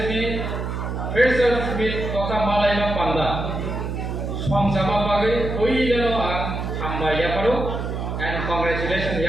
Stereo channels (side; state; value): right; noise; hum, 4 dB below the sound